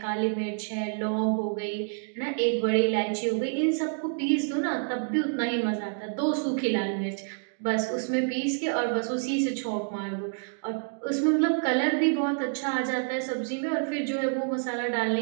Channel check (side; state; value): left; silent; 59 dB below the other